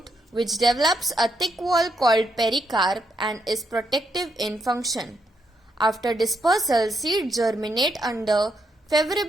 which develops a thick wall called pericarp and is protective in function. After dispersal, seeds germinate under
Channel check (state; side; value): normal; both; correlation 0.78